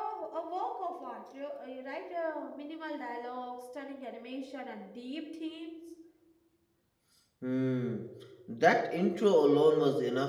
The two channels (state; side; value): identical; both; correlation 1.00